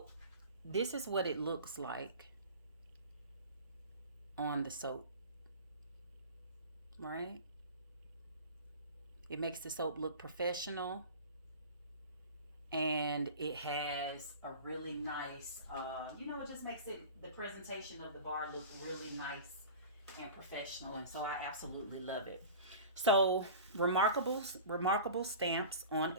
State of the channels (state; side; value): inverted; both; correlation -0.36